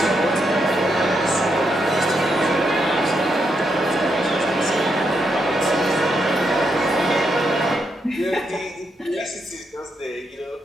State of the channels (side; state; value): both; normal; correlation 0.80